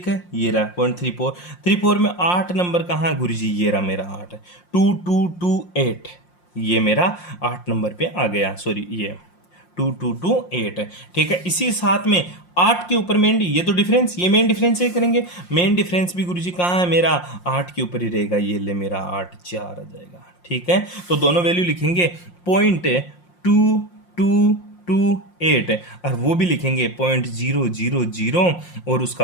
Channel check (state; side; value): late; right; 5.6 ms